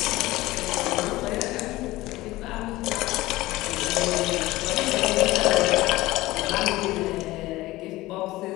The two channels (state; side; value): quieter; right; 18.4 dB